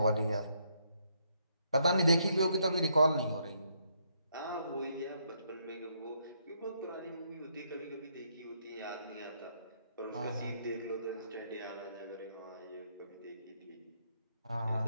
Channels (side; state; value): both; inverted; correlation -0.73